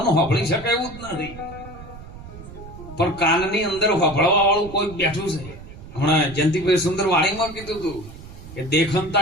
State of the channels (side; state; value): right; noise; rumble, 15 dB below the sound